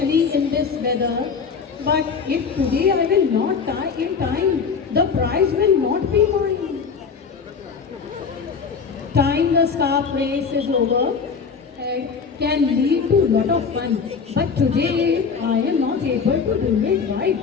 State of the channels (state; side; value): quieter; right; 5.7 dB